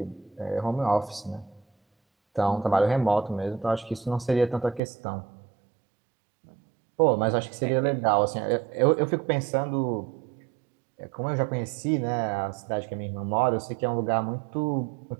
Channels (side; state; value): left; drops out; at 4.8 s